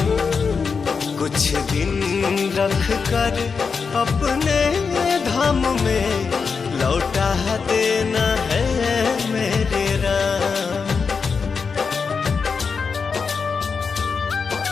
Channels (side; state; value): right; quieter; 5.4 dB